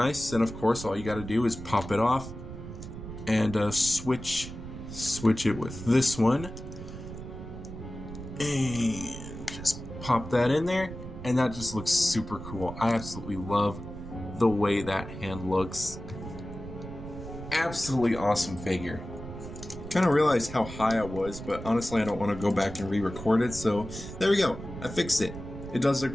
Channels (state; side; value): noise; right; rumble, 11 dB below the sound